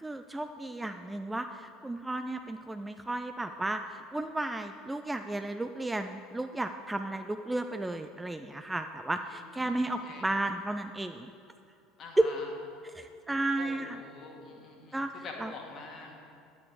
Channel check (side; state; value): both; normal; correlation 0.89